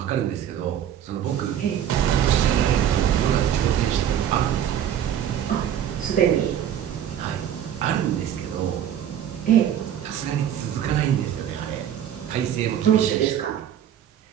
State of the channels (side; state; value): left; quieter; 10.1 dB